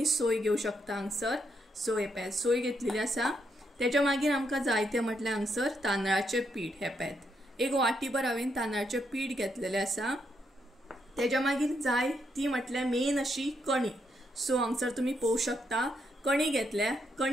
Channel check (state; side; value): normal; both; correlation 0.78